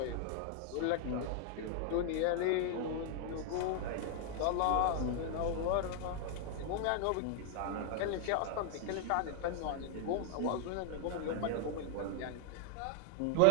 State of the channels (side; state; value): both; different; correlation 0.00